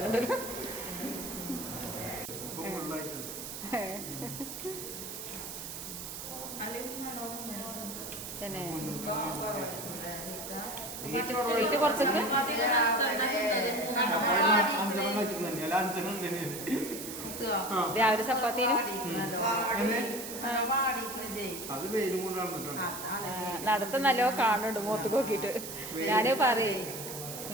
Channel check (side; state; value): right; noise; hiss, 8 dB below the sound